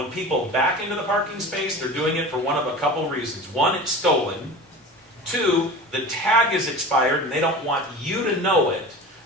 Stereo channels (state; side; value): normal; both; correlation 0.34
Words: people back into the parking space, they're doing it for one of a couple reasons. 1, it's stolen. 2, the tag is expired and they don't want you to know it